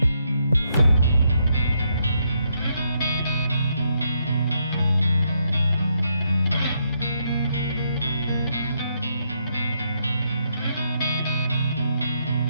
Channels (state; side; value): inverted; both; correlation -0.76